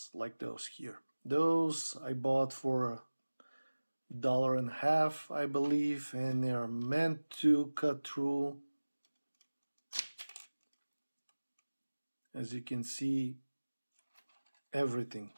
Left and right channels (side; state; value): both; inverted; correlation -1.00